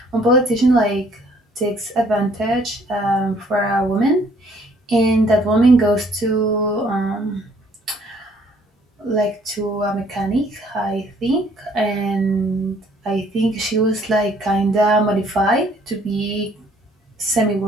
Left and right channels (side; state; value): both; normal; correlation 0.61